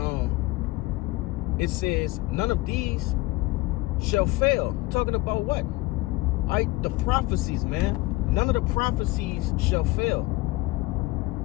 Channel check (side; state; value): right; quieter; 20.7 dB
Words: it says none of these shall fail. Talking about what? All right, the prophecies, man. None of the prophecies shall fail.